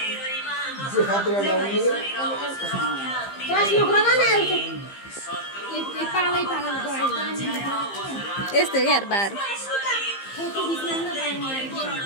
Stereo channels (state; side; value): late; right; 15 ms